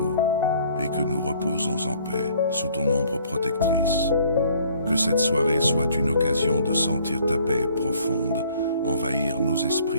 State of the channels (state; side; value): inverted; both; correlation -0.59